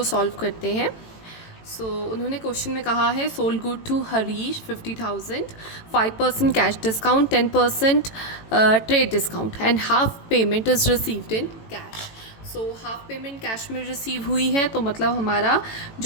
सॉल्व करते हैं। उन्होंने क्वेश्चन में कहा है sold good to Harish 50,000, 5% cash discount, 10% trade discount and half payment is received in cash. Half payment cash में रिसीव हुई है, तो मतलब हमारा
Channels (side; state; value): right; late; 18 ms